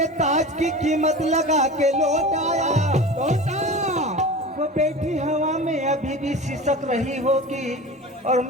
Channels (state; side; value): normal; both; correlation 0.33